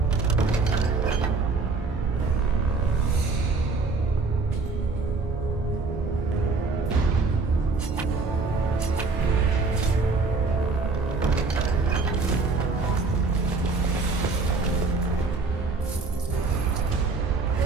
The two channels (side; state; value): left; quieter; 4.0 dB